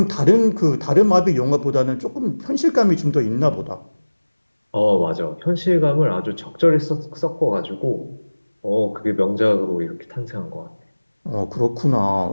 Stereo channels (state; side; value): inverted; both; correlation -1.00